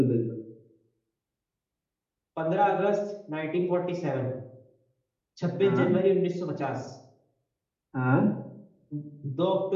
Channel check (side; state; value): both; identical; correlation 1.00